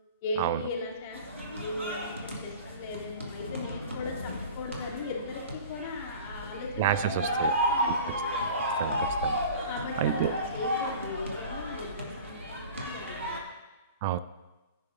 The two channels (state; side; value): inverted; both; correlation -0.40